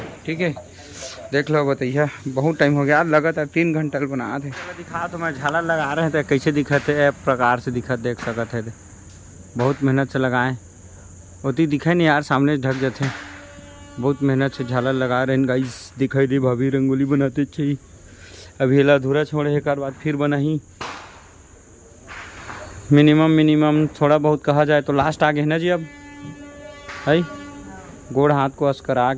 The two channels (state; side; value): identical; both; correlation 1.00